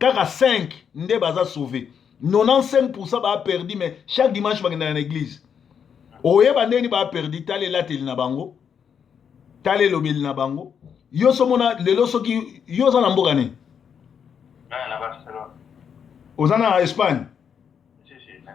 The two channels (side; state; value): right; quieter; 7.4 dB